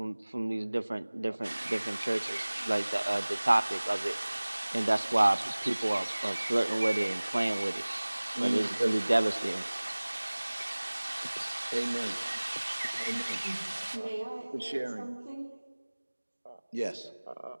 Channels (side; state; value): both; inverted; correlation -1.00